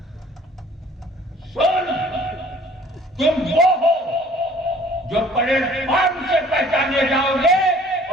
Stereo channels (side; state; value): both; normal; correlation 0.53